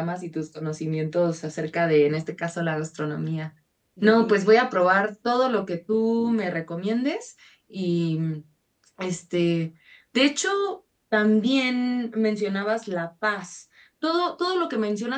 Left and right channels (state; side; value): identical; both; correlation 1.00